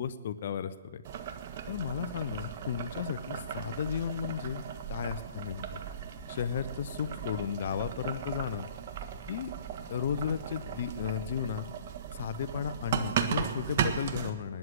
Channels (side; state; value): both; inverted; correlation -0.50